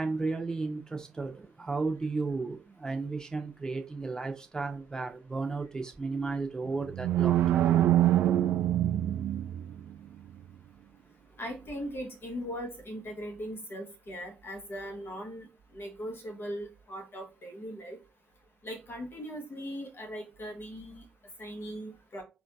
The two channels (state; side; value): quieter; left; 7.4 dB